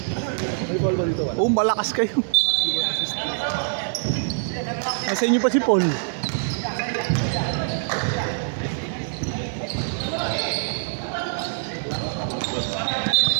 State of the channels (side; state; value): left; silent; 63 dB below the other